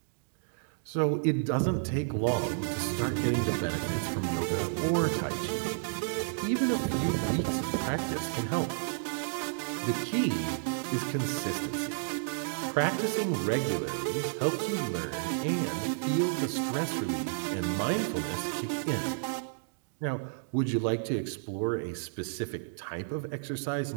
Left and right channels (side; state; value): left; silent; digital silence